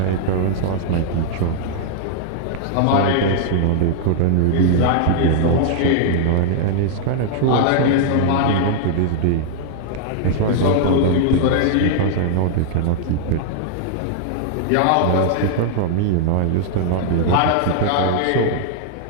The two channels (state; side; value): different; both; correlation -0.01